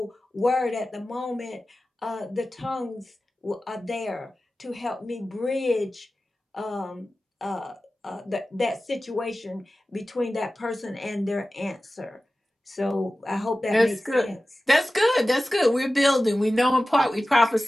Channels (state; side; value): normal; both; correlation 0.95